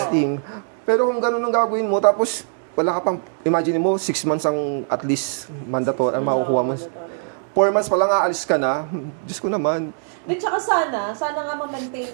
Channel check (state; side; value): silent; left; digital silence